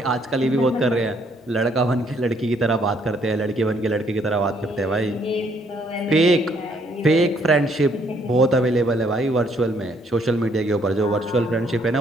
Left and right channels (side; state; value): both; normal; correlation 0.67